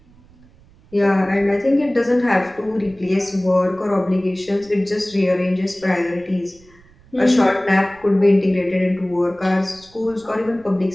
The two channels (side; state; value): right; noise; rumble, 27 dB below the sound